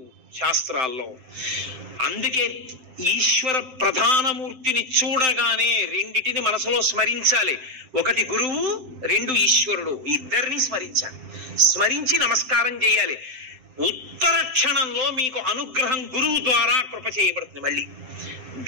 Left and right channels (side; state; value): left; late; 7.7 ms